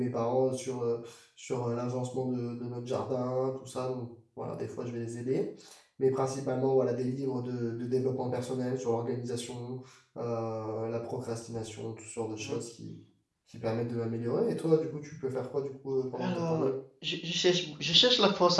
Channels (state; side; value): identical; both; correlation 1.00